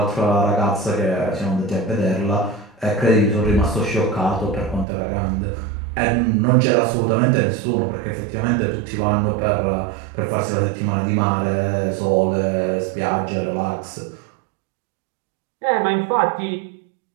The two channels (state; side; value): drops out; left; at 4.9 s